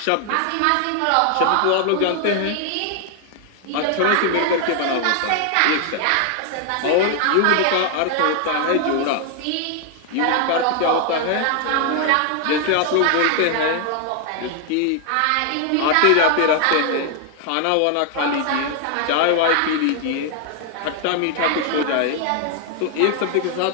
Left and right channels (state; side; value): different; both; correlation 0.00